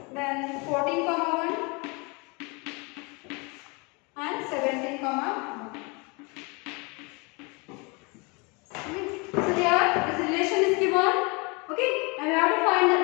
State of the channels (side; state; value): right; quieter; 29.3 dB